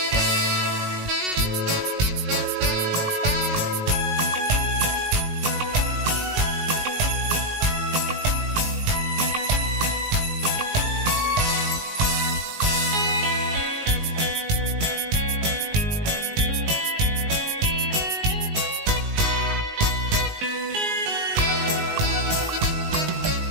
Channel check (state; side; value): late; left; 19 ms